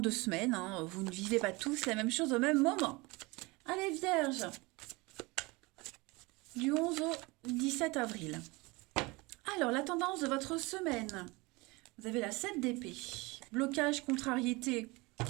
semaines. Hein. Vous ne vivez pas tous la même chose au même moment. Allez, vierges, du 11 au 17 avril. Alors, la tendance de votre semaine. Vous avez la 7 d'épée, blocage, contrariété,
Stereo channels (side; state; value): left; quieter; 24.4 dB